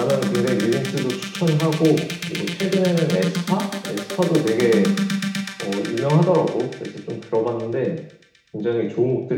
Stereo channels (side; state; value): both; identical; correlation 1.00